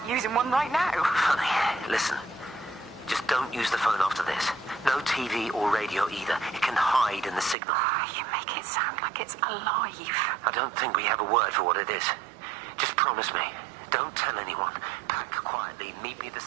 using one right now? Funny. Listen. Just don't use the phone after this. No TV or radio either. It can hide in the signal. You make it sound like it's alive. I don't think we have a word for what it is. Just promise me. Don't tell anyone. Pack quietly. Meet me at the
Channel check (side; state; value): left; drops out; at 7.6 s